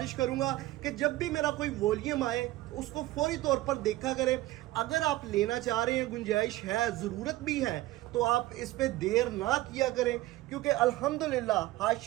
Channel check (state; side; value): quieter; left; 17.2 dB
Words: करूंगा कि जब भी मेरा कोई वॉल्यूम आए उसको फौरी तौर पर देखा करें। अगर आप लेना चाह रहे हैं, गुंजाइश है, ज़रूरत भी है, तो आप इस पे देर ना किया करें, क्योंकि अल्हम्दुलिल्लाह